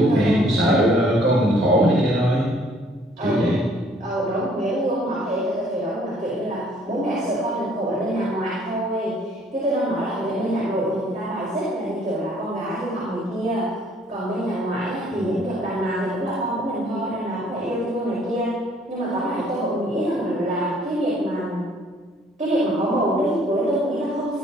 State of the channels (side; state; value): both; normal; correlation 0.60